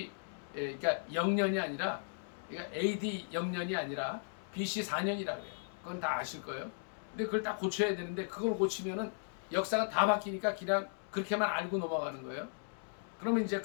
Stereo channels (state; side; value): silent; right; digital silence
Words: 그러니까 0년이 아니라, 그러니까 AD 0년이 아니라 BC 4년이라 그래요. 그건 다 아실 거예요. 근데 그걸 다 고쳐야 되는데 그걸 고치면은 역사가 다 바뀌니까 그냥 그렇게만 알고 넘어가는 거예요. 그러면 이제